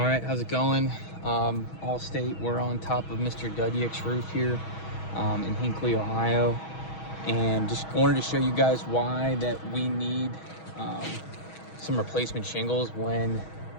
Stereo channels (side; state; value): right; late; 6.2 ms